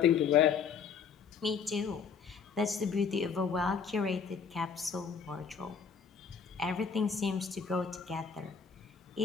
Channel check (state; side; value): quieter; right; 6.2 dB